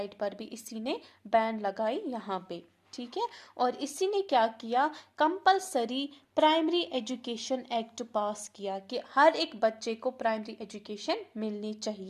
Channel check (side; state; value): both; identical; correlation 1.00